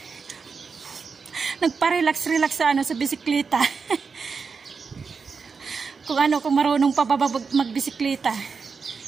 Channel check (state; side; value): quieter; left; 5.3 dB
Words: nagpa-relax sa ano, sa bisikleta. Kung marunong pa ba magbisikleta.